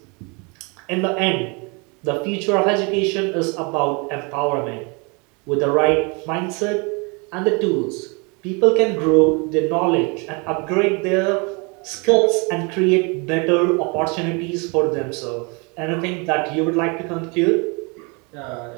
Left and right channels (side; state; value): left; quieter; 31.1 dB